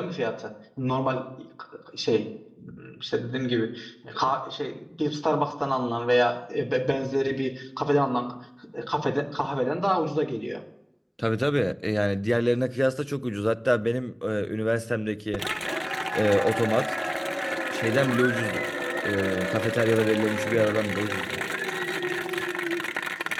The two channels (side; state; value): both; identical; correlation 1.00